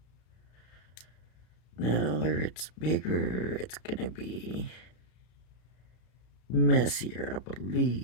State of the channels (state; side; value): late; right; 33 ms